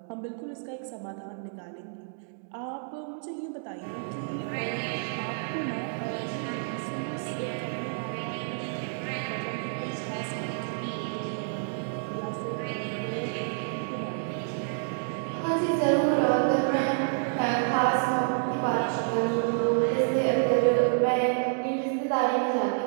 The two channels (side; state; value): left; silent; digital silence